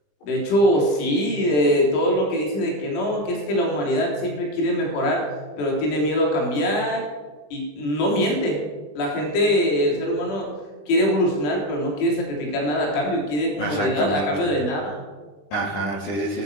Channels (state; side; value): late; right; 20 ms